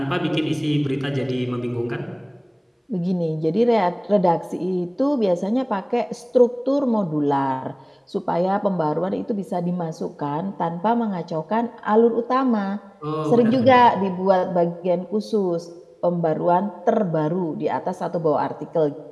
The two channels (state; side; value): identical; both; correlation 1.00